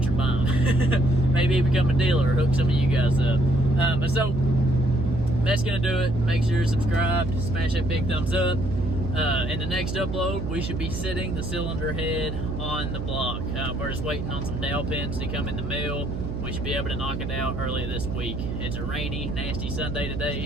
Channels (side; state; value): right; noise; hum, 5 dB below the sound